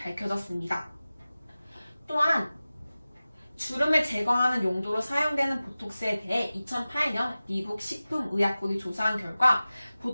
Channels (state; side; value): inverted; both; correlation -0.97